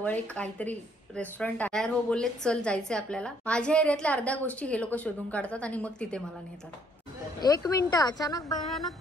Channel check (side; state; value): both; normal; correlation 0.66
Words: एक काहीतरी रेस्टॉरंट तयार हो बोलले, चल जायचंय आपल्याला. माझ्या एरियातल्या अर्ध्या गोष्टी हे लोक शोधून काढतात आणि मग तिथे मला नेतात. 1 मिनिट, अचानक